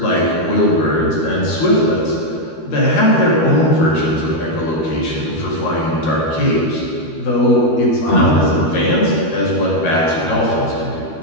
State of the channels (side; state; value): right; late; 13 ms